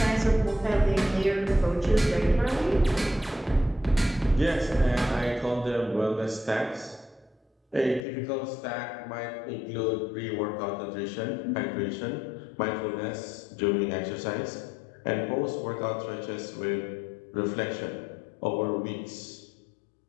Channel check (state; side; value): drops out; right; at 8.1 s